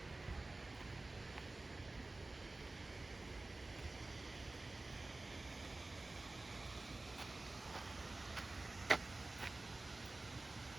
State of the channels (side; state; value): left; quieter; 3.0 dB